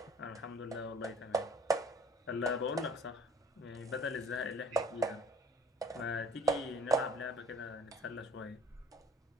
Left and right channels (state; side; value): normal; both; correlation 0.51